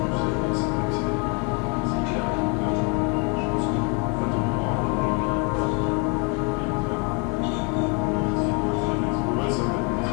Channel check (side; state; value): right; quieter; 34.4 dB